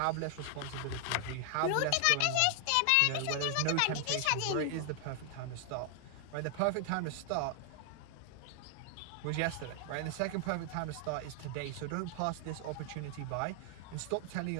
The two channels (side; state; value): both; different; correlation 0.00